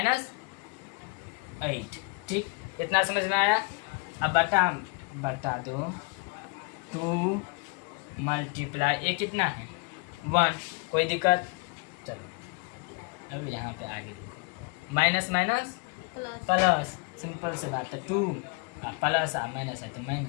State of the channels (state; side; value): quieter; right; 31.4 dB